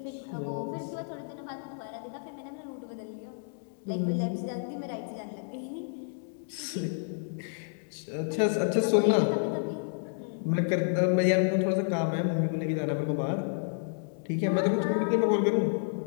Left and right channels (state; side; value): silent; right; digital silence